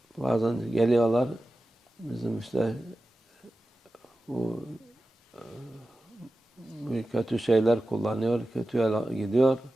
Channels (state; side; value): normal; both; correlation 0.94